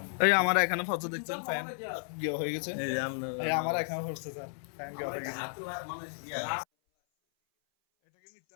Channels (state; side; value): silent; right; 56 dB below the other